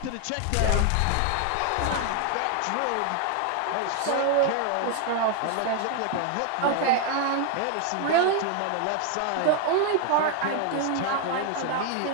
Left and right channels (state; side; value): different; both; correlation 0.00